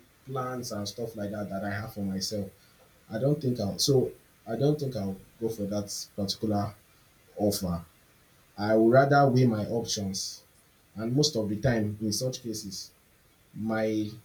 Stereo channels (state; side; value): identical; both; correlation 1.00